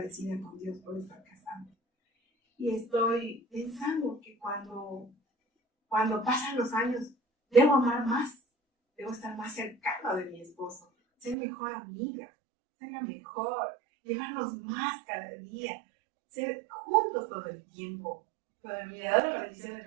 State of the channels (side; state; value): left; drops out; at 11.4 s